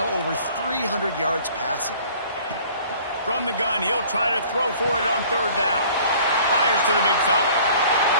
over 300 yards passing. From the gun, he'll try to throw for it on third down. Fires to the big fella.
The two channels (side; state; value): both; inverted; correlation -0.51